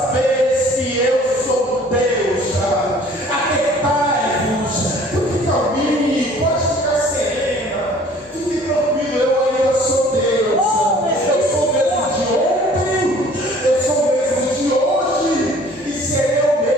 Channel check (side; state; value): both; normal; correlation 0.52